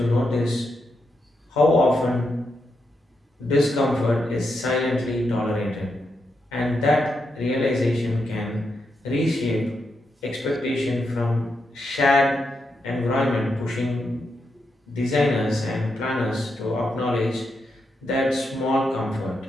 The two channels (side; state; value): both; normal; correlation 0.83